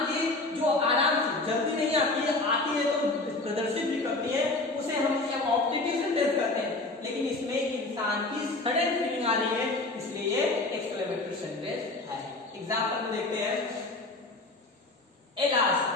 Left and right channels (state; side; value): quieter; right; 3.1 dB